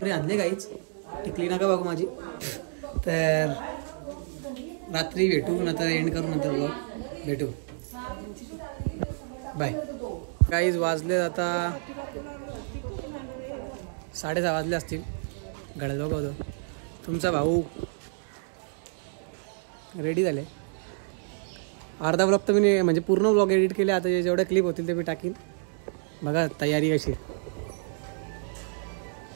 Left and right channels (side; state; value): left; silent; digital silence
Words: आणले काहीच टिकली नका बघू माझी. तर रात्री भेटू नंतर एंड करू नंतर ब्लॉग भेटू. बाय. काहीच वाजले आता 6:30 वाजले असतील. घड्याळ बघतो. तुमचा भाऊ रेडी झाले. अर्धा ब्लॉग तर मी म्हणजे पूर्ण ब्लॉग एडिट केले. आता जेवढ्या क्लिप होतील ते मी टाकीन. बघा तयारी कशी.